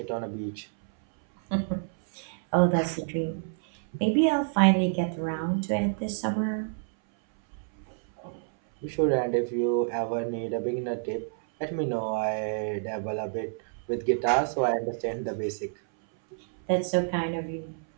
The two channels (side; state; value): left; silent; 59 dB below the other